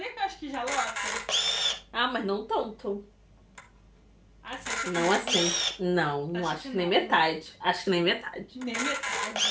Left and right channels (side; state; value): both; identical; correlation 1.00